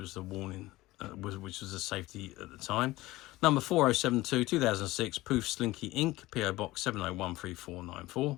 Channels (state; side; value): quieter; right; 18.5 dB